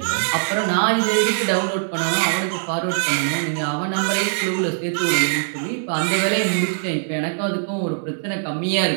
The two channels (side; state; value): left; silent; 62 dB below the other